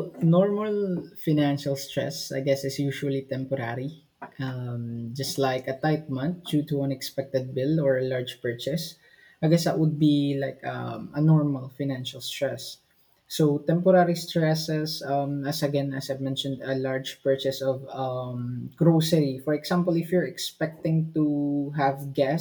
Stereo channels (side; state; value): both; identical; correlation 1.00